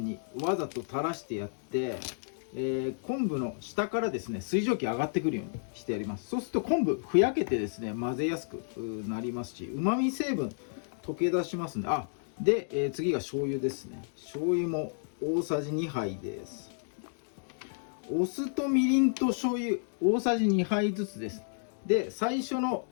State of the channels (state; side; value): silent; right; digital silence